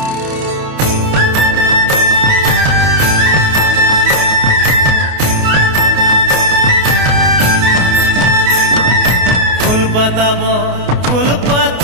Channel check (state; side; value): late; left; 28 ms